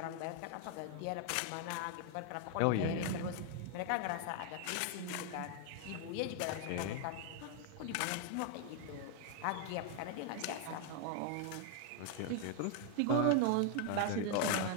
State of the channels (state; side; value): different; both; correlation 0.00